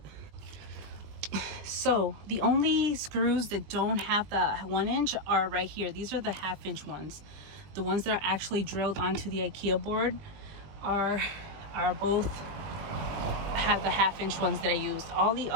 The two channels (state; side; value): late; left; 20 ms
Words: So the only screws that don't have the 1 inch are right here. These are the 1/2 inch ones. The ones that are actually drilled onto the Ikea board are both have the 1/2 inch ones that I used. All the